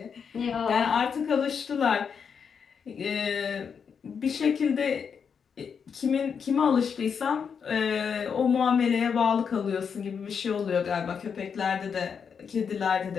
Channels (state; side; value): quieter; right; 6.6 dB